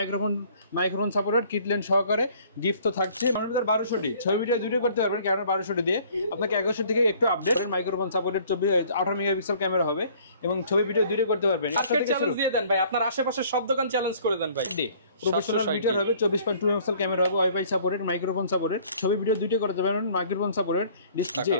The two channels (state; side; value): inverted; both; correlation -0.56